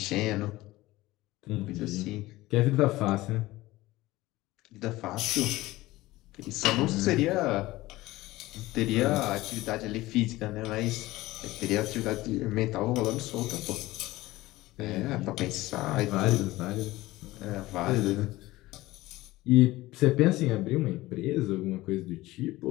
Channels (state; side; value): quieter; right; 18.4 dB